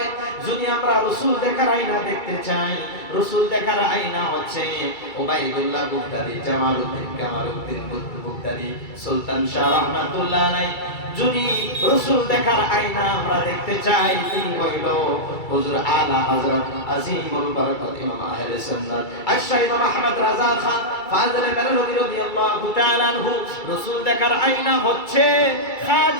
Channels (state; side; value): late; right; 2.3 ms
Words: যদি আমরা রাসূল দেখার আয়না দেখতে চাই, রাসূল দেখার আয়না হচ্ছে উবাইদুল্লাহ বুগদাদি, জামালউদ্দিন কামালউদ্দিন বুগদাদি, সুলতান শাহ রাহমাতুল্লাহ আলাইহি। যদি রাসূল দেখার আয়না আমরা দেখতে চাই, তিনি হইল হুজুর আলা হযরত আজিমুল বারাকাত ইমাম আহলে সুন্নাত আশ-শাইখ মুহাম্মদ রাজা খান ফাজলে বেরলভী রাদিয়াল্লাহু তাআলা আনহু। রাসূল দেখার আয়না হচ্ছে